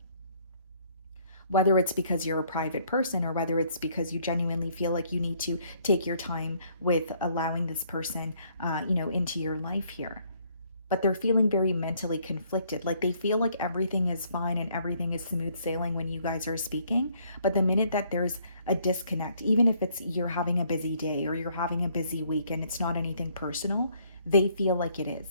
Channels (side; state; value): both; inverted; correlation -0.65